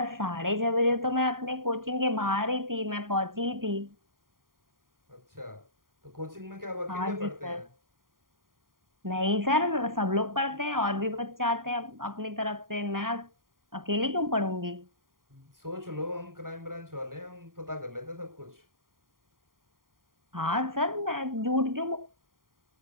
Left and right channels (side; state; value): left; late; 0.91 ms